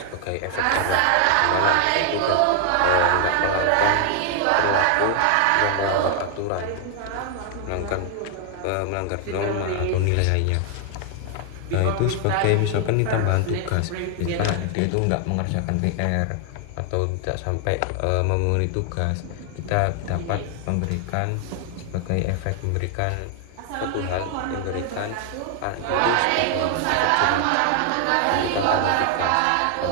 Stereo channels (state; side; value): different; both; correlation 0.00